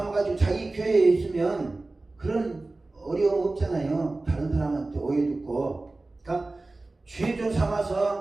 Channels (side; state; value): left; quieter; 3.1 dB